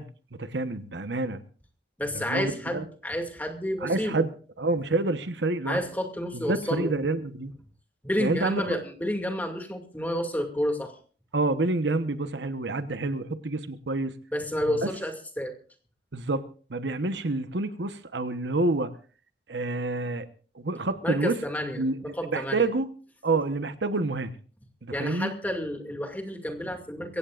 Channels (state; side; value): normal; both; correlation 0.47